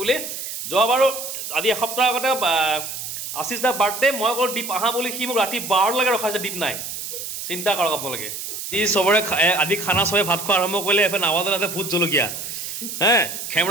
বুলি যোৱাবাৰো আজি এসপ্তাহ আগতে আশিস দা বাৰ্থডে মই অকল দীপ আহা বুলি সি মোক ৰাতি 12লৈকে ৰখাইছে দীপ নাই চিন্তা কৰক আপোনালোকে যি চবৰে আজি খানা চবে ভাত খোৱা আৰম্ভ কৰিলে এফালে নাৱাজতে ভোট জলকীয়া হে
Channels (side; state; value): right; noise; hiss, 7 dB below the sound